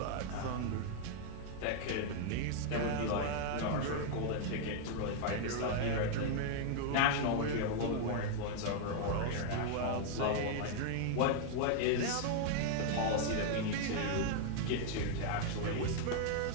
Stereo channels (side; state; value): both; different; correlation 0.00